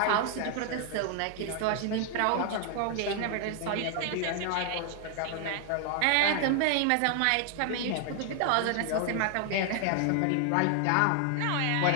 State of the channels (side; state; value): both; different; correlation 0.00